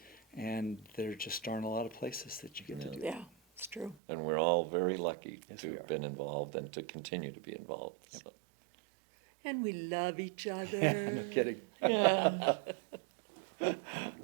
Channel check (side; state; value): left; drops out; at 4.0 s